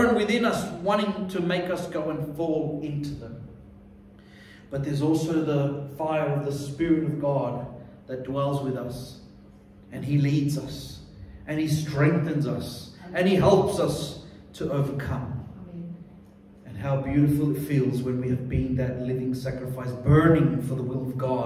within us, wanting to make us go and fall into them. But there's also the fire of the Spirit of God that dwells with us, and He leads us, and He strengthens us, and He helps us to overcome. How beautiful it feels when we have been that living sacrifice, burning for the will of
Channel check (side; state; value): both; identical; correlation 1.00